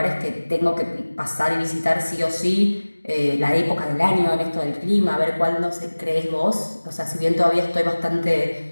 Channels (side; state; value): both; inverted; correlation -1.00